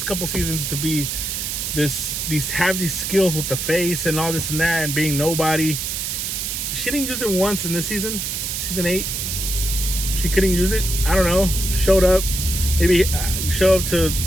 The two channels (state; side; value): noise; right; hiss, 3 dB below the sound